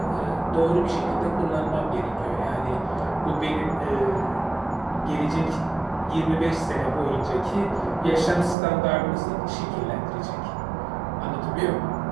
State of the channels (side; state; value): left; drops out; at 8.6 s